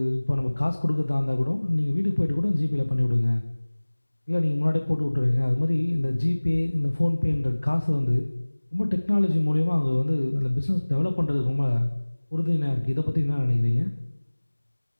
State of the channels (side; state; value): both; inverted; correlation -1.00